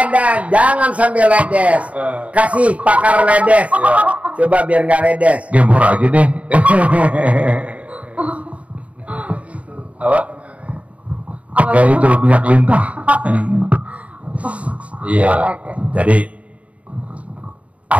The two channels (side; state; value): left; late; 0.066 ms